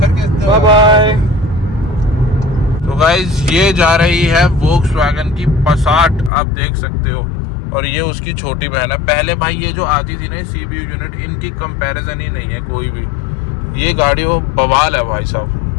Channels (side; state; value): right; drops out; at 6.3 s